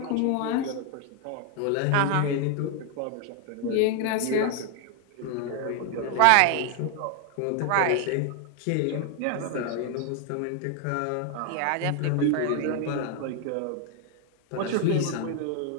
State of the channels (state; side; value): different; both; correlation 0.01